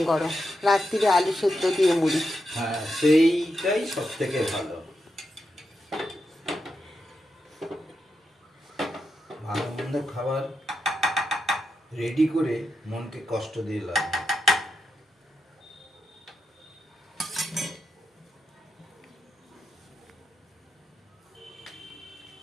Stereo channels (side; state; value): both; normal; correlation 0.86